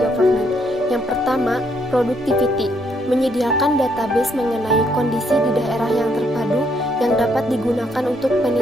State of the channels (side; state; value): both; normal; correlation 0.72